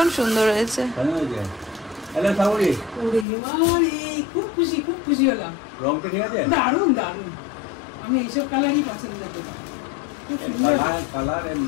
সুন্দর হয়েছে। খুব খুশি, খুব খুশি হলাম। রংটা ঠিক আছে, দারুণ দারুণ। আমি এইসব কালারই পছন্দ করি।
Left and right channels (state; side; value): drops out; right; at 3.2 s